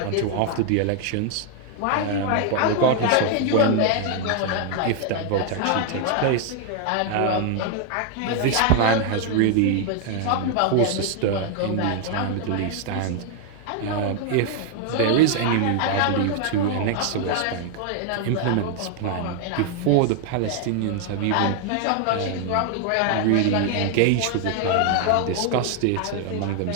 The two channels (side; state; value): both; different; correlation 0.00